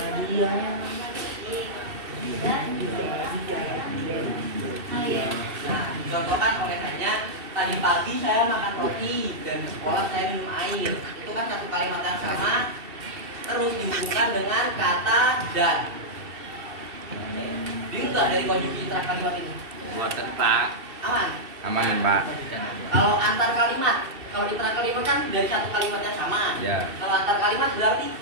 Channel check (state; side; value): late; left; 2.7 ms